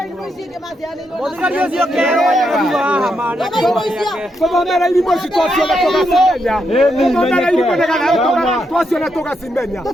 Mũthigari ũcio kero wa hamana kũthomera irimũ ici twaciona tũgacimenya kũthomera irimũ nĩgetha twaciona tũgacimenya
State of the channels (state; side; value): normal; both; correlation 0.80